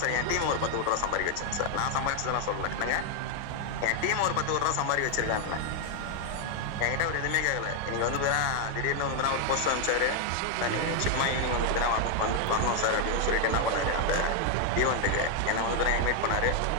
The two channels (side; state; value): both; different; correlation 0.00